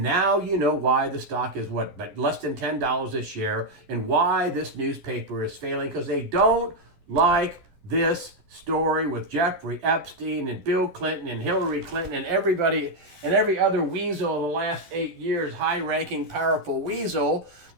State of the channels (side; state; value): left; late; 12 ms